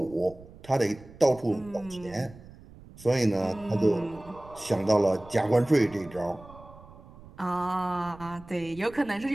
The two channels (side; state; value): right; noise; rumble, 20 dB below the sound